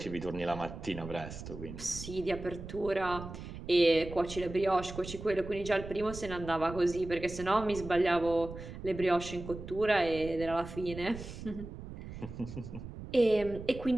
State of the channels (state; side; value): noise; right; rumble, 11 dB below the sound